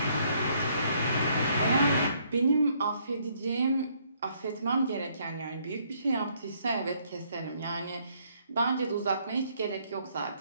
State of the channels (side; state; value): both; inverted; correlation -0.68